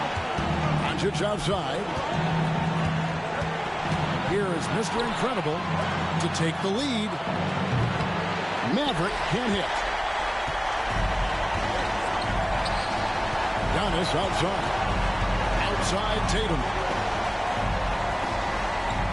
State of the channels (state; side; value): identical; both; correlation 1.00